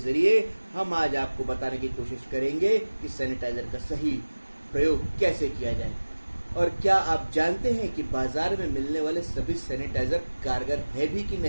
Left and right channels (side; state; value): both; inverted; correlation -1.00